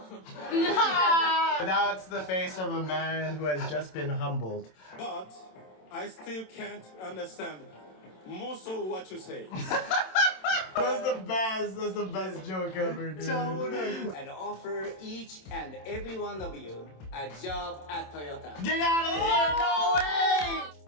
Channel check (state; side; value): late; right; 27 ms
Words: That's the face of a man who has just been humbled. But I still can't understand most of what you say. That's the best joke ever, dude. And offer each and every one of you a job at Toyota. Get out of here! No way!